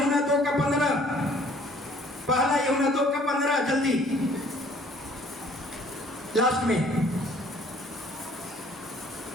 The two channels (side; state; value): both; normal; correlation 0.57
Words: 2:15, पहला यूहन्ना 2:15, जल्दी लास्ट में